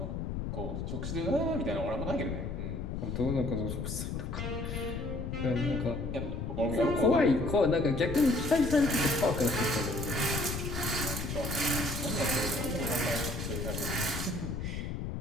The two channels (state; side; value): noise; left; rumble, 4 dB below the sound